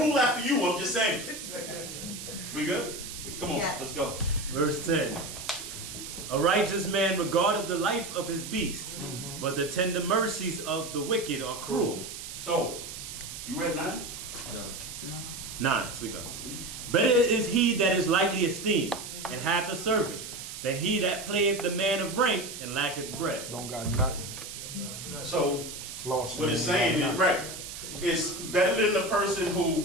after you. I'm just saying. We good? Come on, let's go. Verse 10. A righteous man regardeth the life of his beast, but the tender mercies of the wicked are cruel. So, you read 9? No. 9, sleep up. Better is he that is lightly esteemed, and hath a servant, than he that playeth the man of rank, and lacketh bread. Don't got nothing. So, Floss what it's saying is, right, it's better than the person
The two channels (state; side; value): noise; right; hiss, 10 dB below the sound